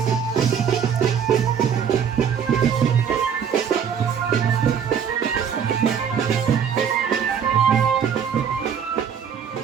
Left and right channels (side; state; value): left; quieter; 7.6 dB